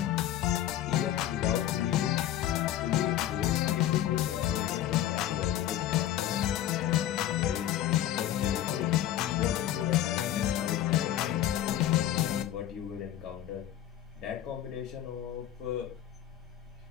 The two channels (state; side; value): quieter; right; 12.1 dB